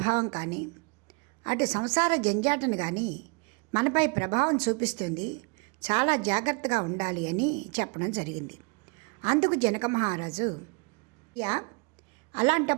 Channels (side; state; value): left; quieter; 31.5 dB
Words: కానీ అటు సంసార జంజాటను కానీ మనపై ప్రభావం చూపిస్తుంది, చాలా జాగ్రత్తగా ఉండాలి అని చెప్పడం జరిగింది. అందుకు జనక మహారాజు